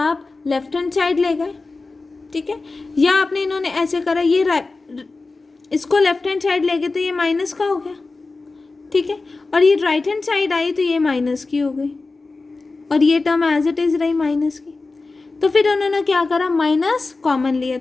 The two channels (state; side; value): quieter; right; 3.7 dB